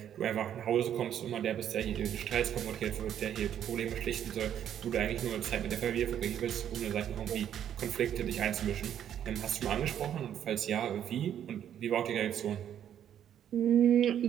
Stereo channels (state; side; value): quieter; left; 9.9 dB